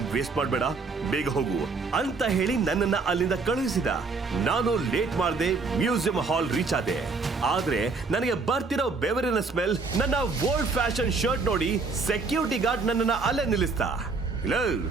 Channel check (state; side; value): quieter; left; 4.2 dB